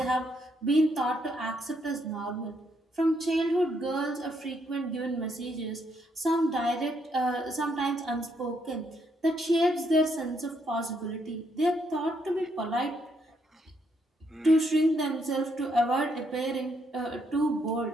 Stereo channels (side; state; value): both; normal; correlation 0.74